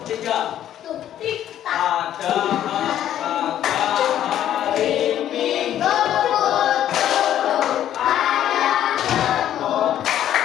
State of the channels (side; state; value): right; quieter; 11.3 dB